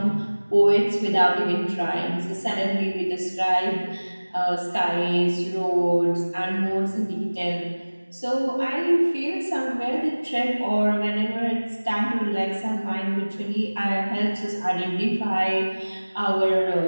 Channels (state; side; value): inverted; both; correlation -1.00